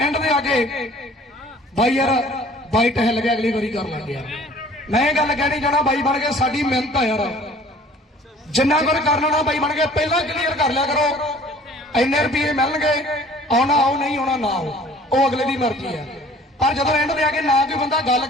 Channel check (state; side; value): normal; both; correlation 0.51